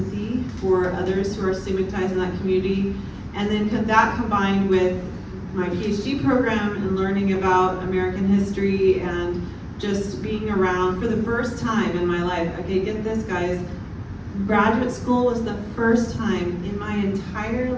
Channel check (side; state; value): both; identical; correlation 1.00